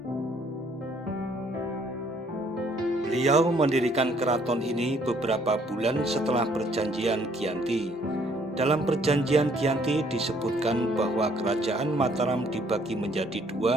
Beliau mendirikan keraton ini beberapa bulan setelah Perjanjian Giyanti. Dalam Perjanjian Giyanti disebutkan bahwa Kerajaan Mataram dibagi menjadi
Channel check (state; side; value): normal; both; correlation 0.64